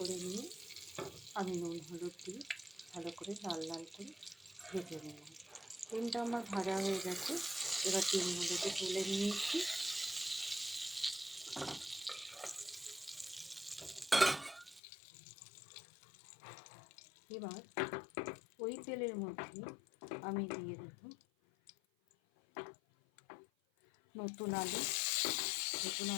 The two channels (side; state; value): right; drops out; at 14.8 s